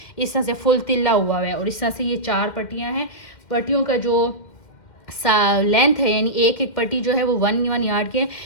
इस तरह से फुल तिल्ला हुआ है और इस तरह से ये 4 पट्टियाँ हैं। पट्टियों का जो लेंथ है यानी एक एक पट्टी जो है वो 1 यार्ड के है,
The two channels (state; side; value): late; right; 2.1 ms